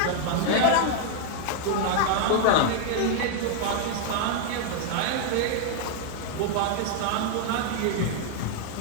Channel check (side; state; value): both; different; correlation 0.00